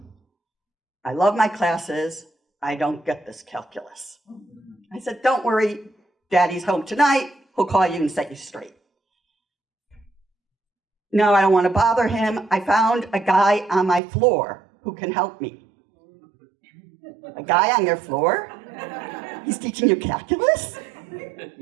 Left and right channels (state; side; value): drops out; left; at 14.0 s